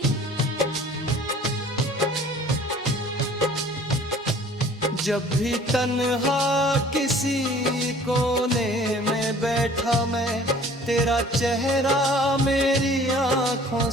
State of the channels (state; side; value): normal; both; correlation 0.51